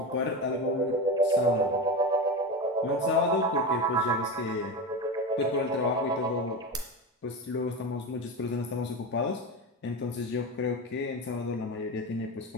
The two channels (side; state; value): both; normal; correlation 0.22